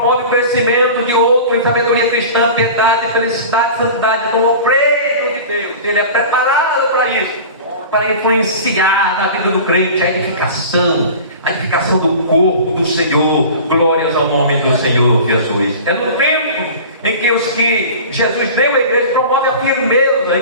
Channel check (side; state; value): both; inverted; correlation -0.37